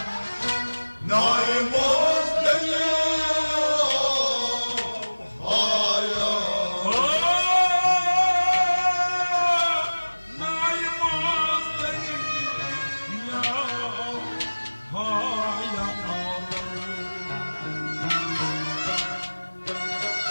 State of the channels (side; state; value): both; inverted; correlation -1.00